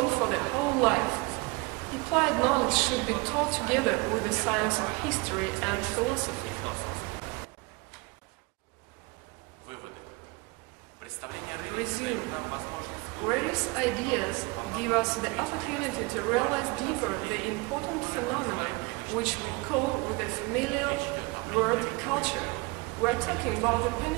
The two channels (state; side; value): quieter; left; 25.4 dB